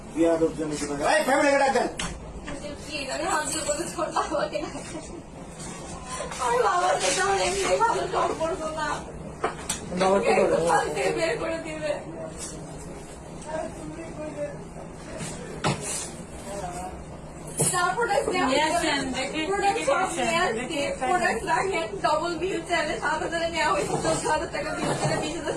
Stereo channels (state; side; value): identical; both; correlation 1.00